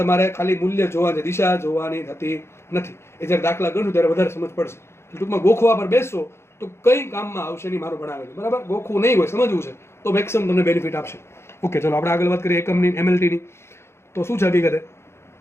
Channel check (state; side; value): late; right; 0.12 ms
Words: ખાલી મૂલ્ય જોવાની, દિશા જોવાની થતી નથી. એ જ્યારે દાખલા ગણશું ત્યારે વધારે સમજ પડશે. ટૂંકમાં ગોખવા પર બેસશો તો કઈ કામમાં આવશે નહીં મારું ભણાવેલું, બરાબર. ગોખવું નહીં હોય, સમજવું છે તો મેક્સિમમ તમને બેનિફિટ આપશે. ઓકે, ચલો આપણે આગળ વાત કરીએ એકમની, MLTની. તો શું છે હકીકતે?